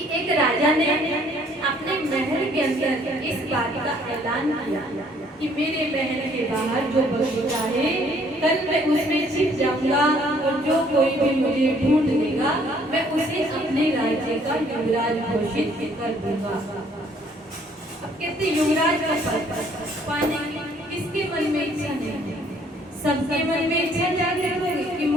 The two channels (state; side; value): normal; both; correlation 0.62